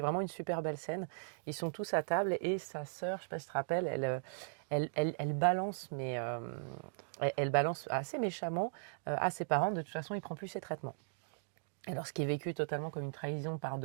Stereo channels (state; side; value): silent; left; digital silence